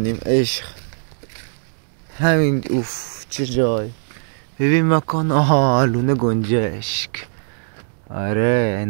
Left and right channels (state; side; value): silent; left; 66 dB below the other